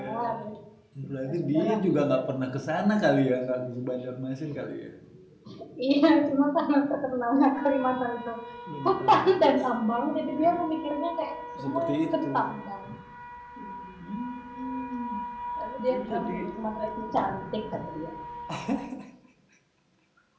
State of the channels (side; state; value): both; identical; correlation 1.00